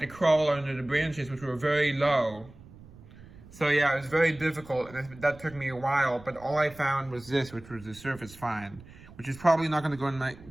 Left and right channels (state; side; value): noise; right; rumble, 20 dB below the sound